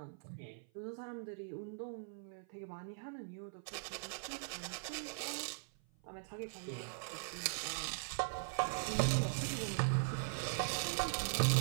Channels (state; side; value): silent; left; 50 dB below the other